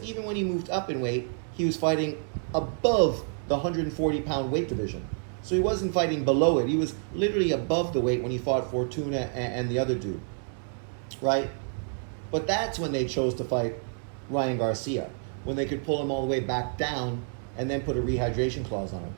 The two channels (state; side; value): silent; left; 55 dB below the other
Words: even when he moved up in weight, he was fighting above the 140 pound weight division. So he wasn't fighting below it. He was literally above the weight when he fought Fortuna and the other dude, right? But that's when they chose to fight Ryan Garcia, when they could pull him all the way back down and then put a rehydration clause on him.